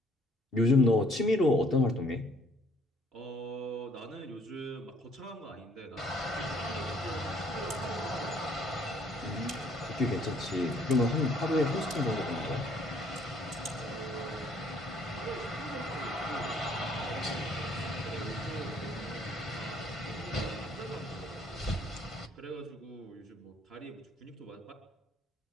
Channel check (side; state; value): both; normal; correlation 0.62